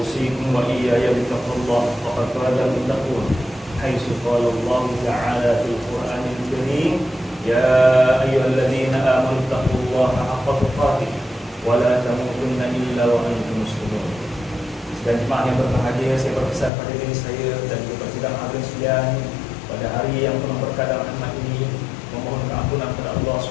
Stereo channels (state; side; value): drops out; right; at 16.7 s